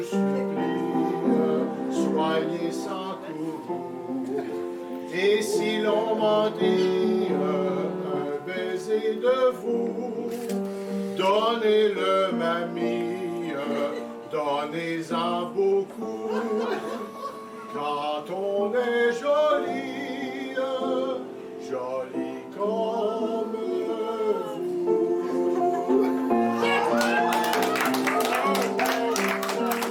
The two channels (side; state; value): both; identical; correlation 1.00